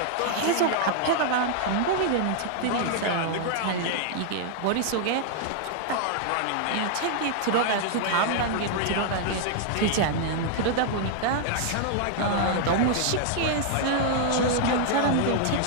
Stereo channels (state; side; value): different; both; correlation -0.01